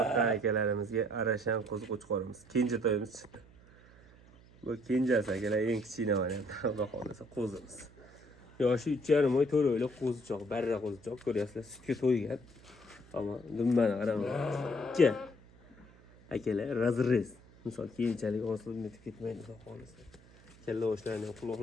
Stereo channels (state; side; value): noise; right; hum, 24 dB below the sound